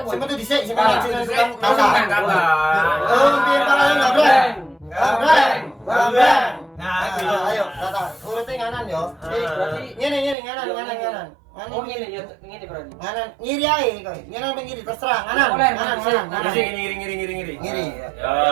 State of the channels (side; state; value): left; drops out; at 10.4 s